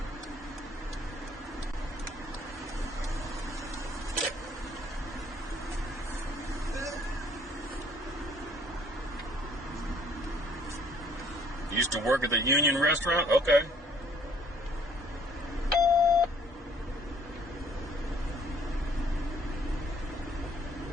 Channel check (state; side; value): normal; both; correlation 0.60